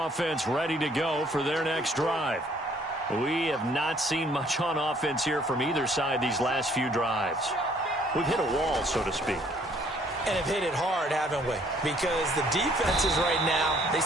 ready to go for their next drive. We have not seen much on offense here from either side these last few drives. We've hit a wall, so to speak. And have hit it hard, haven't we? Because the defenses right now, they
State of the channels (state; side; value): normal; both; correlation 0.62